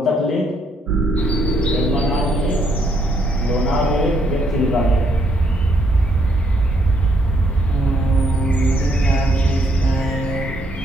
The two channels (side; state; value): both; normal; correlation 0.71